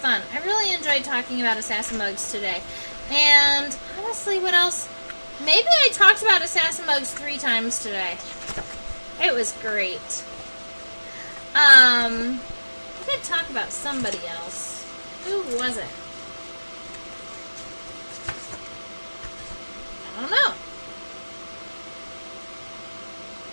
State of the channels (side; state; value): both; inverted; correlation -1.00